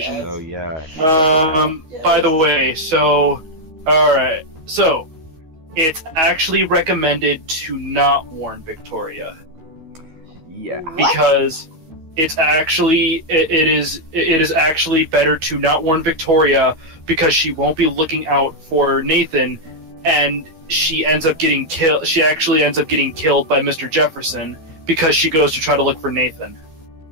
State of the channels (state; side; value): late; left; 12 ms